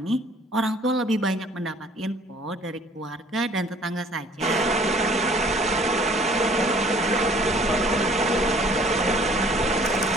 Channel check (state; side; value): normal; both; correlation 0.55